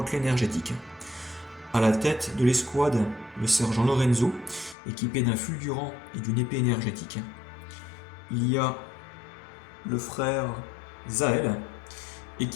énergétique. À la tête de l'escouade, le sergent Lorenzo, équipé d'un fulgurant et d'une épée énergétique. Il y a le frère Zael,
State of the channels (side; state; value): right; drops out; at 4.8 s